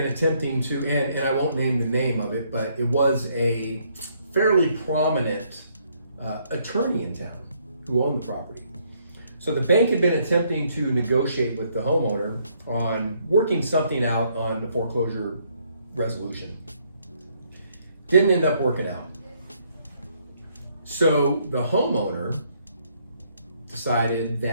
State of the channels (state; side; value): inverted; both; correlation -0.70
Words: attempting to, and I won't name the name of it, but it was a fairly prominent attorney in town who owned the property. So the bank had been attempting to negotiate with the homeowner on working something out on the foreclosure resolution. Didn't end up working out. So the homeowner decided